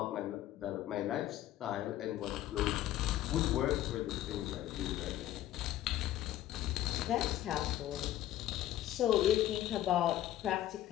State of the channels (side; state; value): right; quieter; 13.4 dB